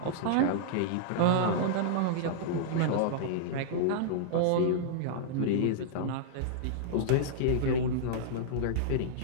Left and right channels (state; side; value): different; both; correlation -0.02